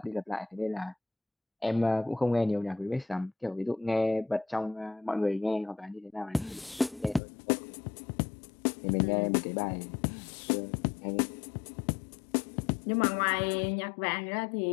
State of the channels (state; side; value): drops out; right; at 7.2 s